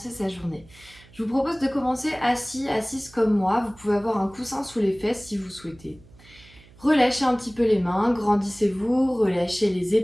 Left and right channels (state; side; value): noise; right; hum, 25 dB below the sound